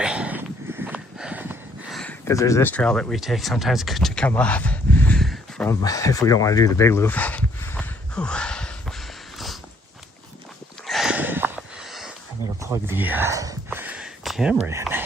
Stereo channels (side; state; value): both; normal; correlation 0.65